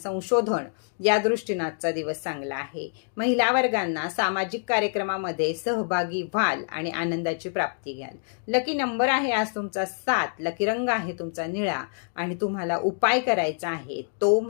या दृष्टीने आजचा दिवस चांगला आहे। महिला वर्गांना सामाजिक कार्यक्रमामध्ये सहभागी व्हाल आणि आनंदाची प्राप्ती घ्याल। लकी नंबर आहे आज तुमचा 7, लकी रंग आहे तुमचा निळा आणि तुम्हाला उपाय करायचा आहे तो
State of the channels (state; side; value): silent; right; digital silence